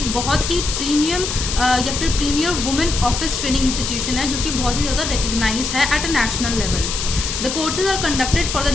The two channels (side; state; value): left; noise; hiss, 4 dB below the sound